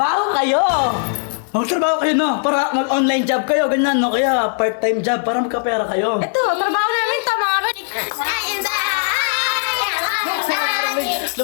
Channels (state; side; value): silent; right; digital silence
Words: kayo! Magtrabaho kayo, no? Para mag-online job kayo, ganyan, no? Kaya part-time job para magkapera kayo. Ito, trabaho namin. Tama nga ba?